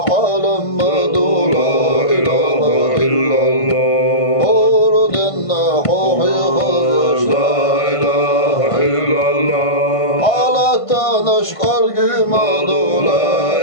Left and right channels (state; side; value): late; right; 1.5 ms